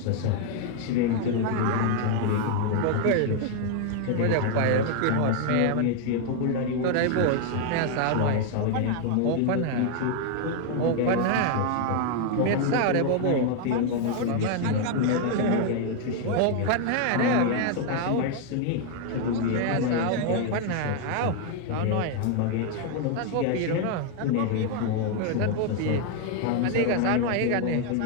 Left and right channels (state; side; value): different; both; correlation 0.00